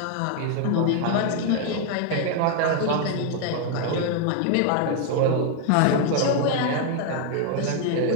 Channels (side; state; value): both; different; correlation 0.00